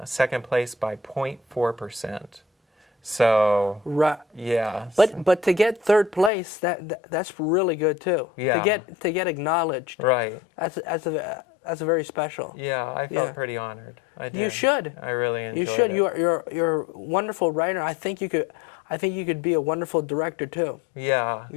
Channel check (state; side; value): drops out; right; at 6.3 s